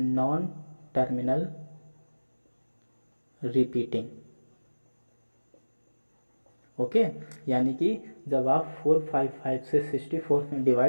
terminal repeating. ओके, यानी कि जब आप 455 से 64 में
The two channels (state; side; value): inverted; both; correlation -1.00